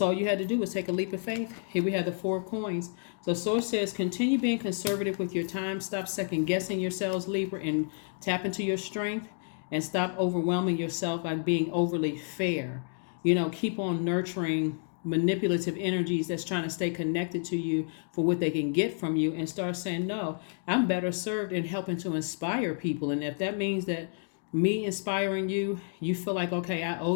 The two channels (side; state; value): right; silent; 58 dB below the other